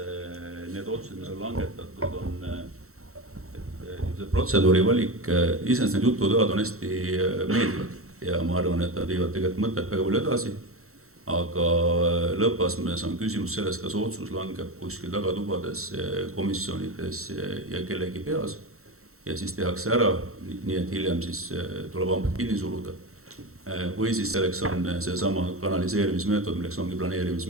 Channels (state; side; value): late; left; 0.63 ms